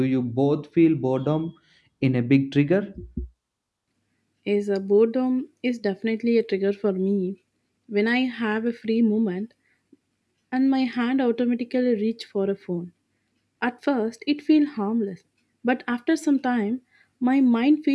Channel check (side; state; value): both; identical; correlation 1.00